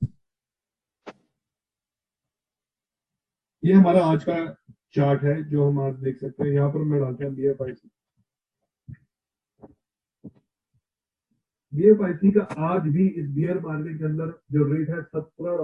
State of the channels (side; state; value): both; identical; correlation 1.00